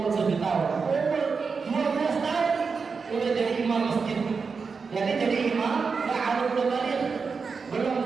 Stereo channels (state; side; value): quieter; left; 5.1 dB